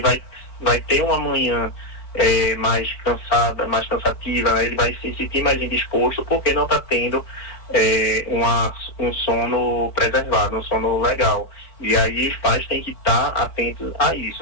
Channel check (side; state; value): right; late; 4.4 ms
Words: ter uma manhã mais cansada, mais cansativa, né? Ele vai se sentir mais indisposto porque não está tendo um sono preservado, um sono legal. E aí os pais têm que estar atentos a